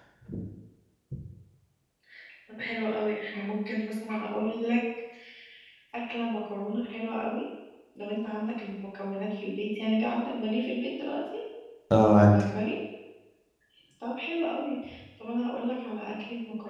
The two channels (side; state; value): both; identical; correlation 1.00